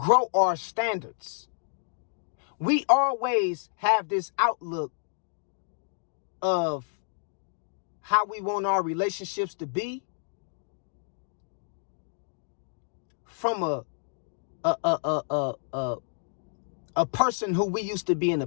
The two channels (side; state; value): right; silent; digital silence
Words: our standards. We always have this outlook of how we want our relationships to be from a person who we used to be in the